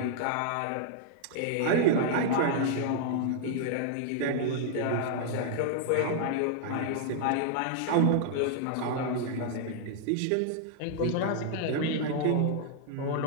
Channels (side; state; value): both; different; correlation -0.01